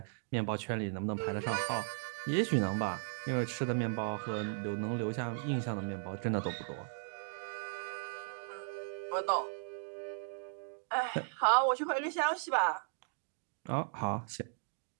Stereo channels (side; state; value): left; silent; digital silence